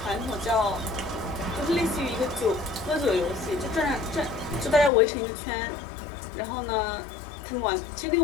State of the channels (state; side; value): drops out; right; at 4.9 s